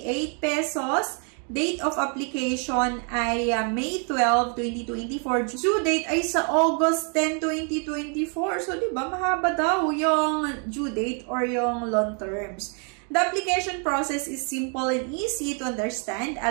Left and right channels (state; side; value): quieter; left; 39.3 dB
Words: 8 pesos. Date of application ay May 12, 2024. Due date ay sa August 10, 2024. So, diba, mahaba daw yung due date or yung long terms. The application process is simple and easy to understand,